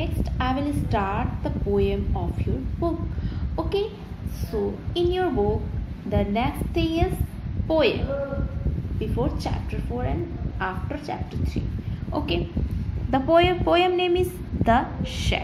I will start the poem of your book. Okay, so in your book the next thing is poem before chapter 4 and after chapter 3. Okay, the poem name is The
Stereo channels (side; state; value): both; identical; correlation 1.00